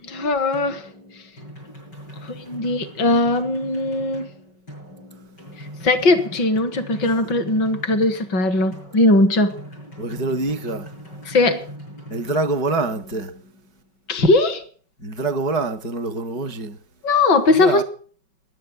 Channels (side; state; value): right; late; 5.3 ms